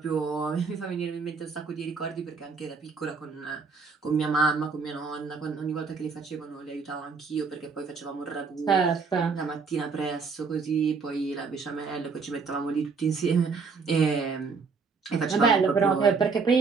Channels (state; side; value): quieter; left; 5.0 dB